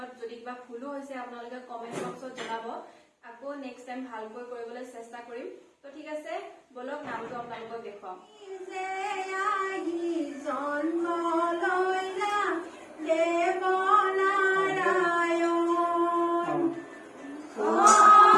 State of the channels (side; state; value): both; identical; correlation 1.00